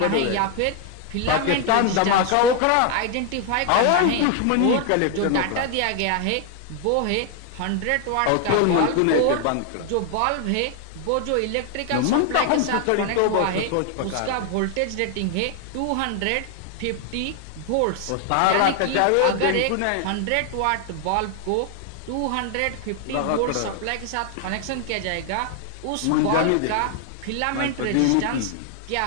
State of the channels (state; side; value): different; both; correlation 0.00